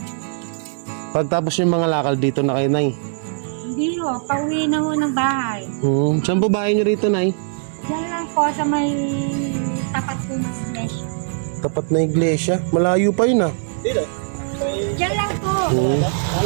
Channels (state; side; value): silent; left; 61 dB below the other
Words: Pagtapos yung mga lakal dito na kayo, Nay? Hindi ho, pauwi na ho ng bahay. Saan po bahay nyo rito, Nay? Diyan lang po sa may tapat po ng iglesia. Tapat na iglesia? Malayo pa yun, Dito. Diyan lang po.